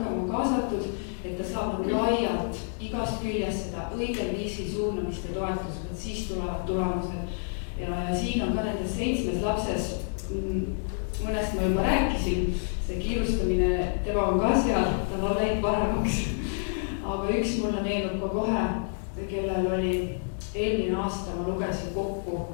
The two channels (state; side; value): silent; right; digital silence